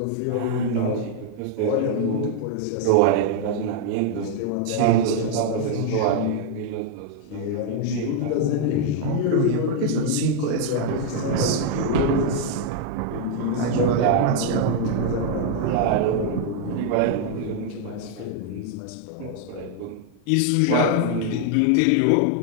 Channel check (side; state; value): both; different; correlation 0.00